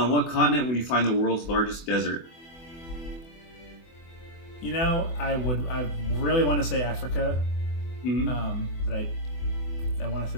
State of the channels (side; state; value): right; late; 24 ms